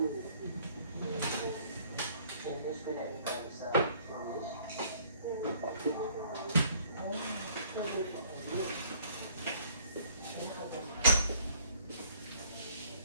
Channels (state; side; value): inverted; both; correlation -0.58